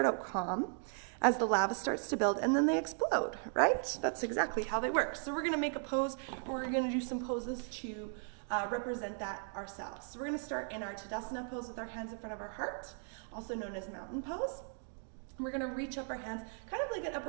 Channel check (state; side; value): silent; left; 53 dB below the other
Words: out calm as the lava starts to build and then they explode, right? That's exactly how they work. So we're going to make a pose, or we're going to do some poses to represent that ourselves. So we're going to start in our Tadasana pose with our hands in front of our heart, also known as mountain pose. We're going to reach up our hands, kind of like an